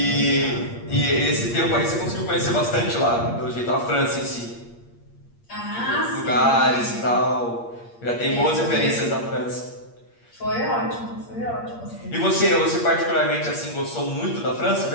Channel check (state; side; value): late; right; 8.6 ms